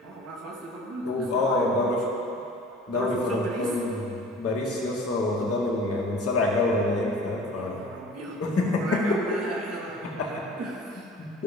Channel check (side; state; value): both; normal; correlation 0.44